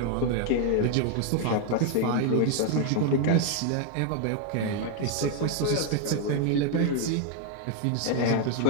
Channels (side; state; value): both; different; correlation 0.00